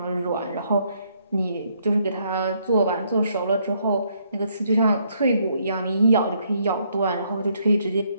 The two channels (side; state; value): both; inverted; correlation -0.71